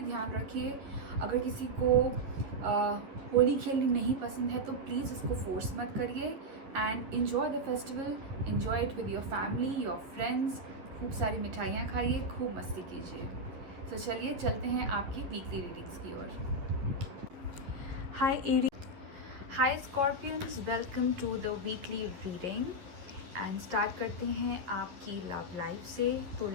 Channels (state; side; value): late; left; 11 ms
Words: ध्यान रखिए. अगर किसी को होली खेलनी नहीं पसंद है तो प्लीज़ उसको फोर्स मत करिए and enjoy the festival, enjoy it with your family, your friends. खूब सारी मिठाइयाँ खाइए, खूब मस्ती कीजिए. तो चलिए चलते हैं आपकी वीकली रीडिंग्स की ओर. Hi Scorpions, welcome to the weekly reading and start करते हैं आपकी लव लाइफ से. तो